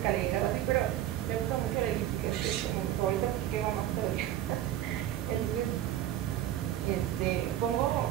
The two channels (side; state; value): left; quieter; 12.5 dB